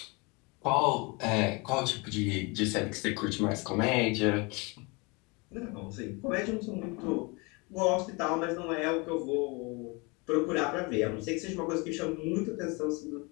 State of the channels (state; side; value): quieter; right; 28.4 dB